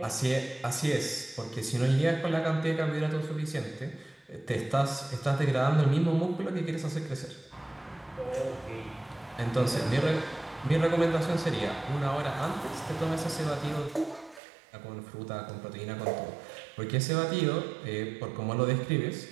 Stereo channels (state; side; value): drops out; left; at 14.4 s